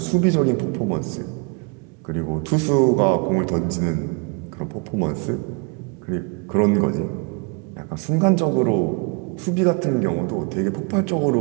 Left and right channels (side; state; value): left; quieter; 33.3 dB